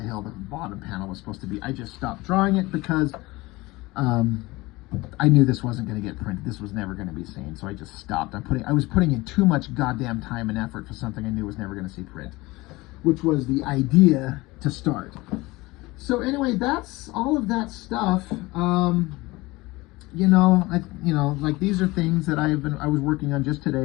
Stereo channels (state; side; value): quieter; right; 21.3 dB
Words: hell the bottom panel was supposed to be. I just stopped drawing it because I knew this wasn't going to get printed. This was never going to be seen. So I just stopped. I was putting in too much goddamn time and effort for something I knew was never going to see print, which was the idea to start. So anyway, that's all of that stuff. Like these are things that I was working on just